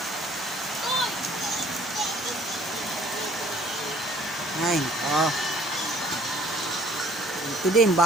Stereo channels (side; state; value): both; normal; correlation 0.58